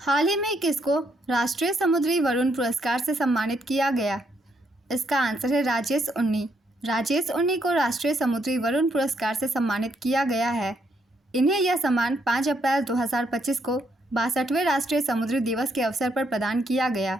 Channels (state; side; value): normal; both; correlation 0.74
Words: ही में किसको राष्ट्रीय समुद्री वरुण पुरस्कार से सम्मानित किया गया? इसका आंसर है राजेश उन्नी। राजेश उन्नी को राष्ट्रीय समुद्री वरुण पुरस्कार से सम्मानित किया गया है। इन्हें यह सम्मान 5 अप्रैल 2025 को 62वें राष्ट्रीय समुद्री दिवस के अवसर पर प्रदान किया गया।